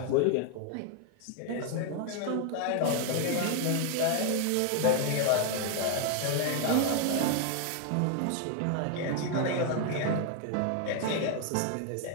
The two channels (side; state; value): both; different; correlation 0.01